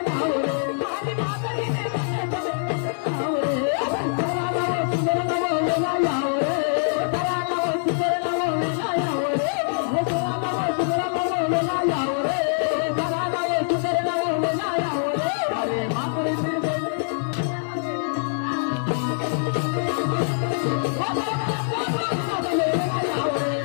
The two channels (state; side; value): silent; right; digital silence